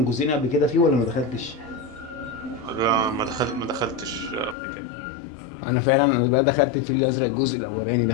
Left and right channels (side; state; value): right; drops out; at 4.5 s